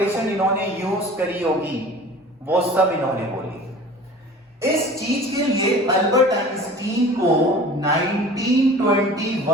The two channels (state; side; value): normal; both; correlation 0.42